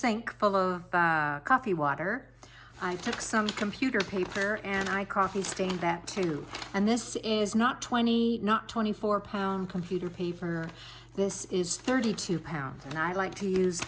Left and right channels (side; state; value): both; identical; correlation 1.00